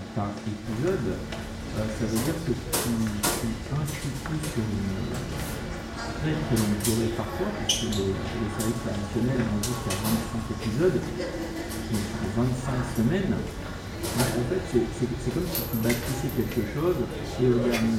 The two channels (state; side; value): identical; both; correlation 1.00